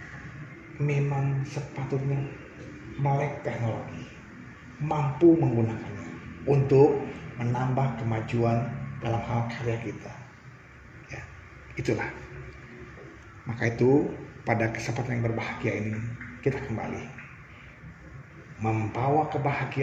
memang sepatutnya melek teknologi, mampu menggunakannya untuk menambah kemajuan dalam hal karya kita. Ya, itulah. Maka itu pada kesempatan yang berbahagia ini kita kembali membawa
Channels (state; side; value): identical; both; correlation 1.00